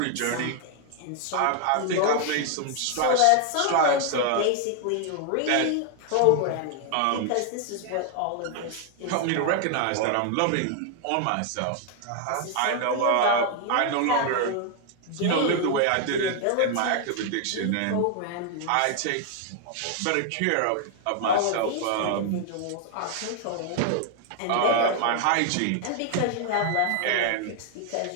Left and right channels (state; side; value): different; both; correlation 0.00